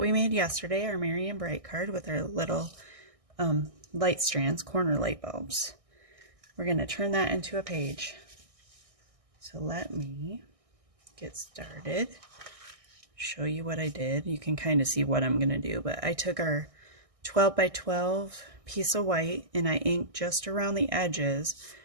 made yesterday, our Merry and Bright card with our little light strands, corner light bulbs. We're going to turn that into a page. So let me get started, show you what I did. You can kind of see what I'm going to do, but I took our 12 by 12 piece of white and I inked just around the edges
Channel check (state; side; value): late; left; 1.6 ms